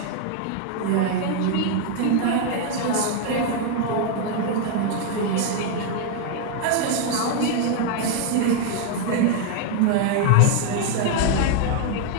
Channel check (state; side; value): different; both; correlation 0.00